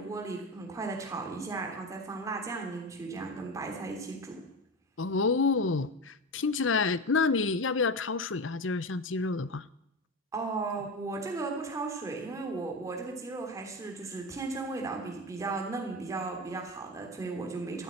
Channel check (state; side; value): normal; both; correlation 0.22